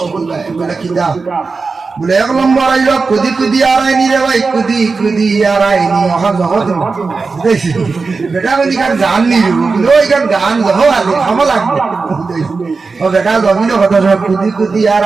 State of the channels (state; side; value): quieter; left; 4.4 dB